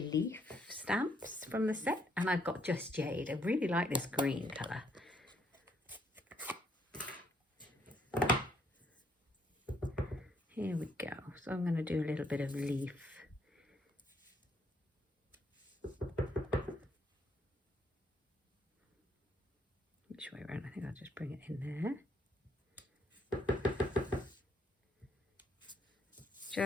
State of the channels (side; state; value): both; normal; correlation 0.70